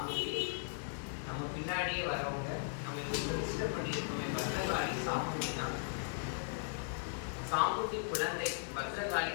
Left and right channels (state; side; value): silent; right; digital silence